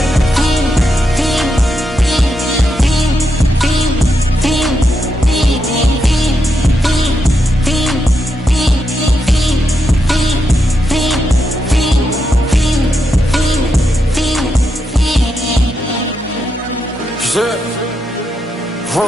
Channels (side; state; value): both; normal; correlation 0.83